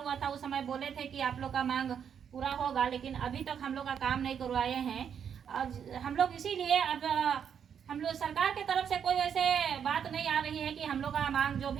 था उस समय बोले थे कि आप लोग का मांग पूरा होगा, लेकिन अभी तक हम लोग का काम नहीं करवाए हैं। और हम लोग इसीलिए अब हम लोग सरकार के तरफ से कोई वैसे बात नहीं आ रही है कि हम लोग का मांग जो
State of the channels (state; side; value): quieter; left; 7.9 dB